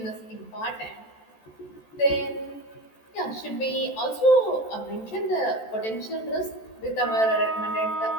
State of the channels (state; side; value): late; right; 14 ms